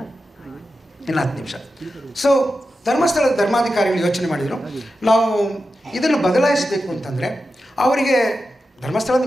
ಇನ್ನು 10 ನಿಮಿಷ. ಸೊ ಧರ್ಮಸ್ಥಳದ ಧರ್ಮಾಧಿಕಾರಿಗಳು ಯೋಚನೆ ಮಾಡಿದರು, ನಾವು ಇದನ್ನು ಬದಲಾಯಿಸಬೇಕು ಅಂತಂದರೆ ಅವರಿಗೆ, ಧರ್ಮಸ್ಥಳ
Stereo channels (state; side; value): normal; both; correlation 0.91